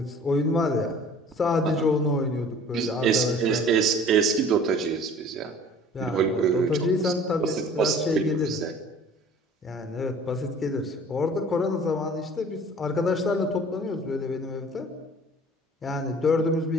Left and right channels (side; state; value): both; normal; correlation 0.48